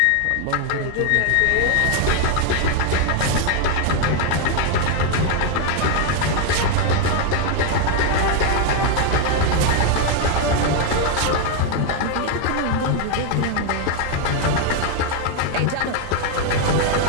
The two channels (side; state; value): both; different; correlation 0.01